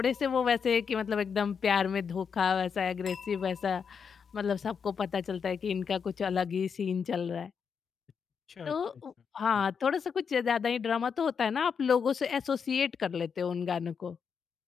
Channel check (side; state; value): right; quieter; 6.5 dB